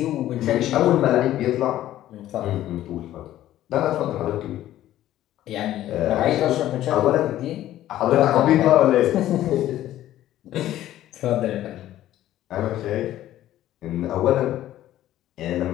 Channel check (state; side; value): quieter; right; 13.4 dB